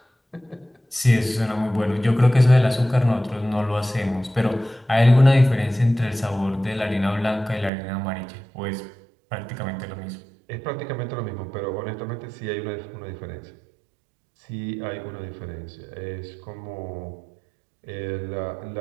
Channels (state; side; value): drops out; left; at 7.7 s